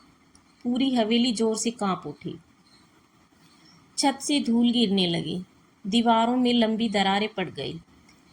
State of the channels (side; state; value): both; identical; correlation 1.00